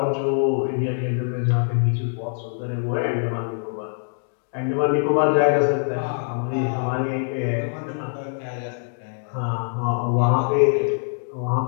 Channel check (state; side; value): silent; right; digital silence